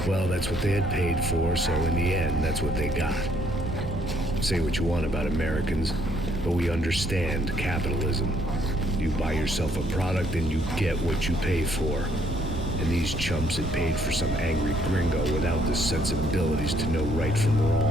Well, that's what they had paid for, so in the end, that's what they got. Say what you want about Americans, but we understand capitalism. You buy yourself a product and you get what you pay for. And these chumps had paid for some angry gringo without the sensibilities to know right from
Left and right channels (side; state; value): right; noise; rumble, 7 dB below the sound